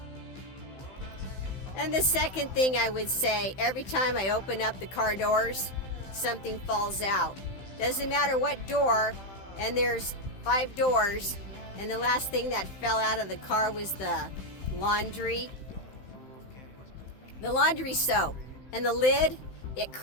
And the second thing I would say, every time I open up the car doors, something falls out. Doesn't matter what door, and there's 5 doors, and the last thing that fell out of the car was the laundry soap. And the lid, it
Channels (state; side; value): late; right; 16 ms